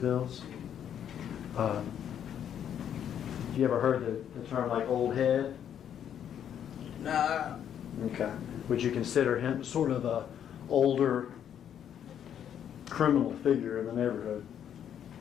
You ever heard the term like old head? Nah, Okay. Would you consider him sort of a older criminal figure in the neighborhood?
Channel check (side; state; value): right; quieter; 9.4 dB